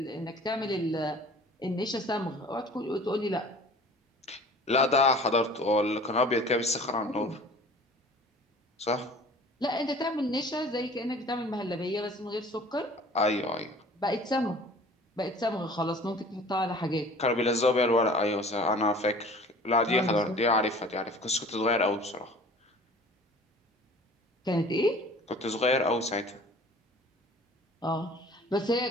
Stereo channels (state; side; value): normal; both; correlation 0.46